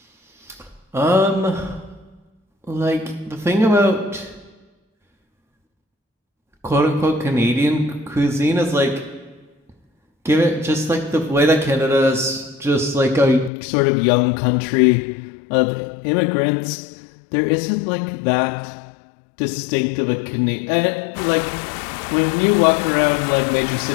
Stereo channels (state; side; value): drops out; right; at 13.5 s